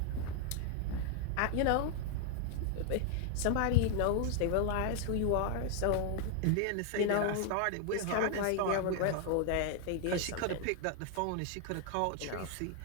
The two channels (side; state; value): both; different; correlation 0.00